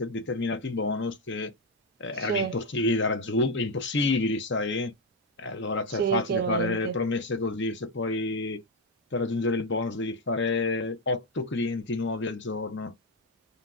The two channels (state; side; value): normal; both; correlation 0.07